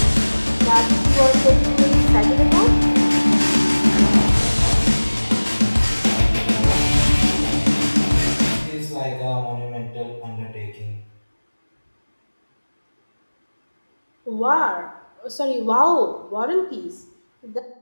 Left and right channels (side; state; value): both; inverted; correlation -1.00